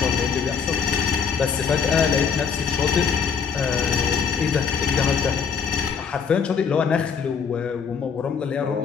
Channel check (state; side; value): quieter; right; 6.4 dB